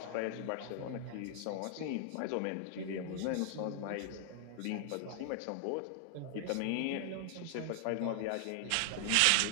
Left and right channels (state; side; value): different; both; correlation 0.00